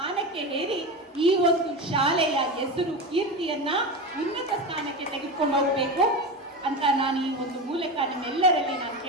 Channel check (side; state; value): both; normal; correlation 0.22